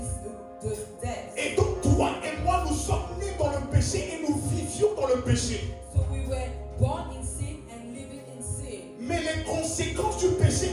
the death. Et donc toi et moi, nous sommes nés dans le péché et nous vivions dans le péché. So we were born in sin and living in sin. Mais les conséquences du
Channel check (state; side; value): identical; both; correlation 1.00